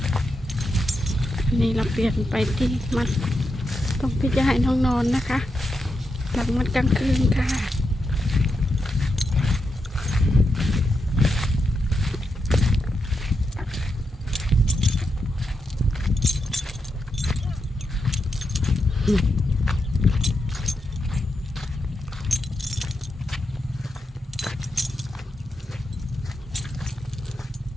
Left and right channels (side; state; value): both; normal; correlation 0.85